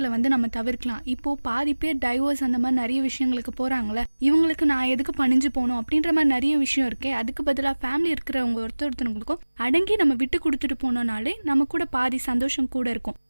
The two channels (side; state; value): both; inverted; correlation -1.00